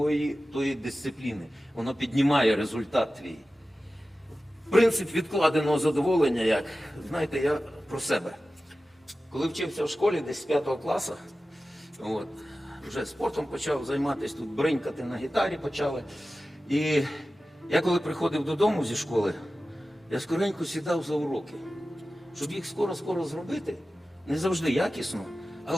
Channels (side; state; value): both; normal; correlation 0.95